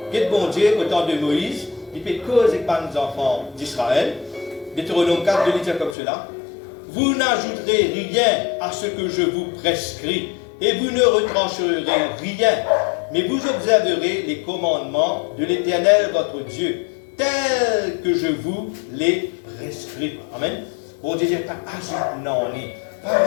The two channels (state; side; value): drops out; right; at 6.0 s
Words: que bon Dieu, au temps de Moïse, il fait cause avec les enfants d'Israël. Deutéronome 4, 2, il dit comme cela. Vous n'ajouterez rien à ce que je vous prescris, et vous ne retrancherez rien, mais vous observerez les commandements de l'Éternel votre Dieu, tels que je vous les prescris. Amen. Bon Dieu, pas ajoute non, pas